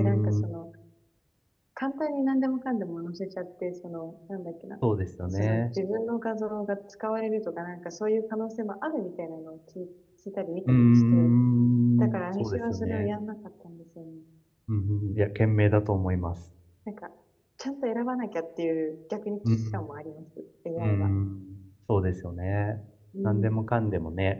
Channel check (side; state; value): both; identical; correlation 1.00